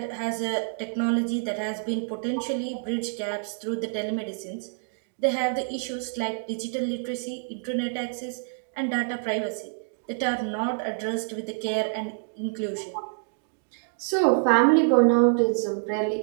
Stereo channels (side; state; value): left; silent; digital silence